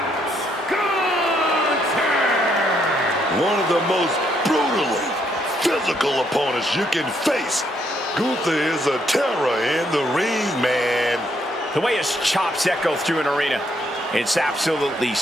Gunther! One of the most brutally physical opponents you can face. Gunther is a terror in the ring, man. The way his chops echo through an arena, it's absolutely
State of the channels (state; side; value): normal; both; correlation 0.73